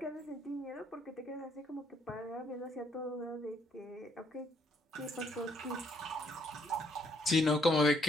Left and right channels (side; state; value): both; normal; correlation 0.69